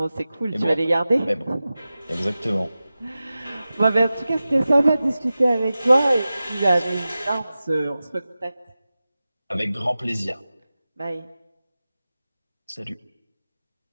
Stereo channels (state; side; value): inverted; both; correlation -0.95